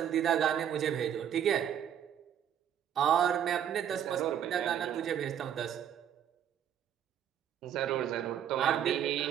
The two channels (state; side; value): quieter; left; 9.6 dB